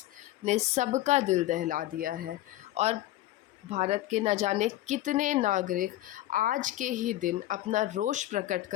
ने सबका दिल दहला दिया है और भारत के न जाने कितने नागरिक आज के ही दिन अपना रोष प्रकट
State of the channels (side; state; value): right; quieter; 15.0 dB